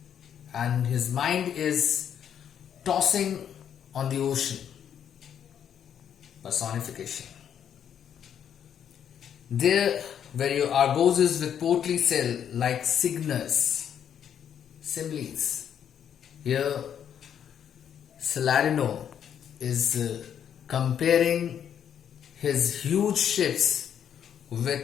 and his mind is tossing on the ocean. Personification. There where your Argoses with portly sail like Cygnus, similes. Here Salarino is comparing his huge ships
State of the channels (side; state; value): right; quieter; 8.9 dB